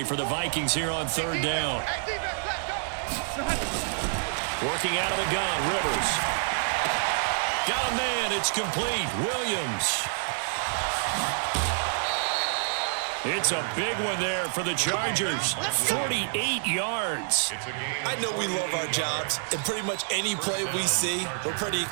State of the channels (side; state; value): left; silent; digital silence